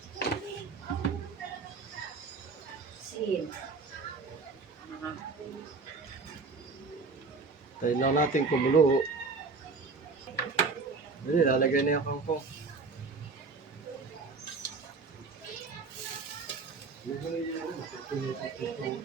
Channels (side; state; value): left; quieter; 4.2 dB